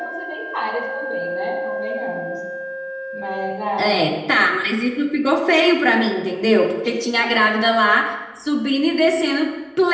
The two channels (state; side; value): identical; both; correlation 1.00